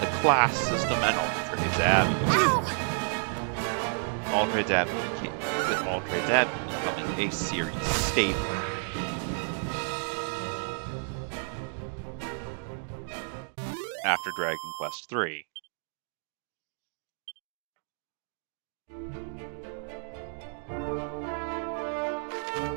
class system and Aldred's Abbey. Aldred's Abbey with Aldred's Abbey becoming a series staple. After Dragon Quest III.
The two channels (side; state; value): left; silent; 57 dB below the other